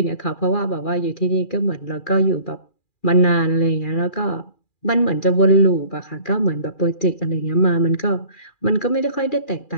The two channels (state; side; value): late; right; 2.4 ms